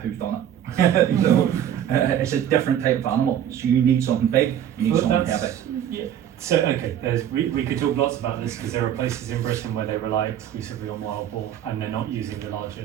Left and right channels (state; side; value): quieter; left; 10.2 dB